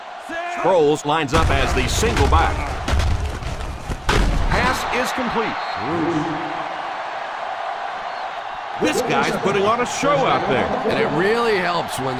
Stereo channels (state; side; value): identical; both; correlation 1.00